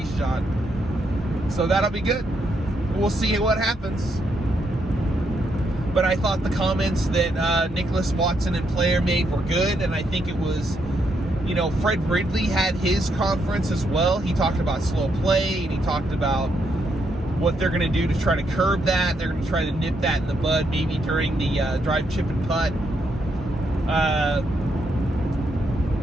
shot. So that'll be good. We'll see what happens. But I thought the comments that Nicklaus, Watson, and Player made were good, and I think it was, you know, Fred Ridley had his conference as well. He talked about slow play, and he talked about what they're going to do to try to curb that. They're going to try to nip that in the bud, maybe during the drive, chip, and putt.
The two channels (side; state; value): both; normal; correlation 0.78